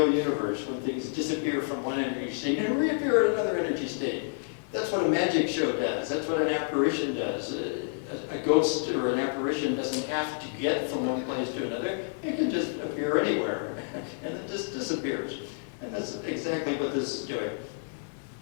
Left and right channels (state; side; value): silent; right; 58 dB below the other